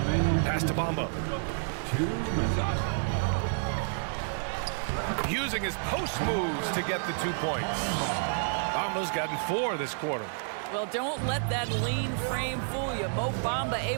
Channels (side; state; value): left; silent; digital silence